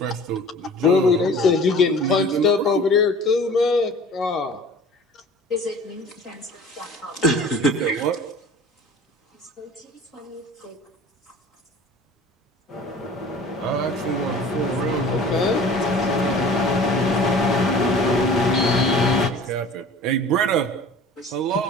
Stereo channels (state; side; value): normal; both; correlation 0.44